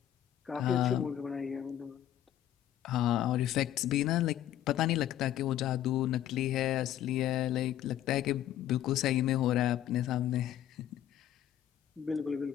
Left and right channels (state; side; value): quieter; right; 11.7 dB